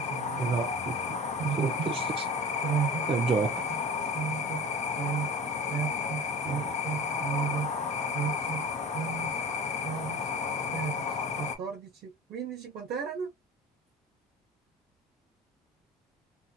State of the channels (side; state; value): both; normal; correlation 0.37